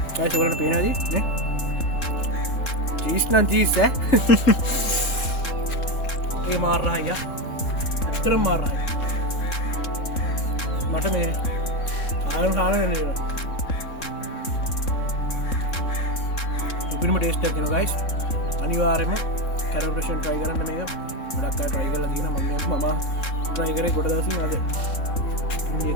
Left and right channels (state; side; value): late; right; 3.7 ms